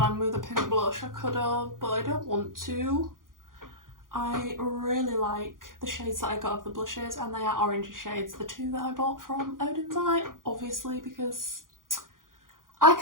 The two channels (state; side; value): late; left; 0.90 ms